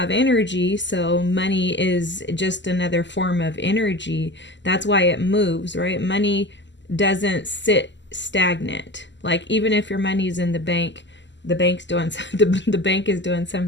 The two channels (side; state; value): right; late; 0.53 ms